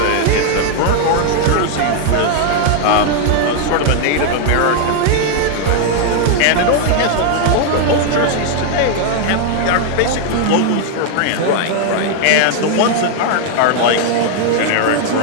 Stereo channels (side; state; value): both; different; correlation 0.00